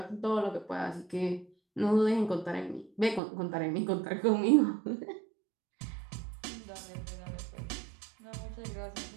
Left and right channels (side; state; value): left; drops out; at 3.2 s